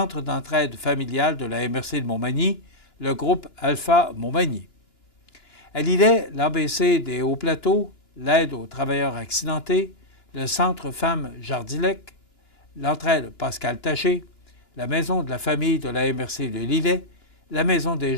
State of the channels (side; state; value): right; late; 2.9 ms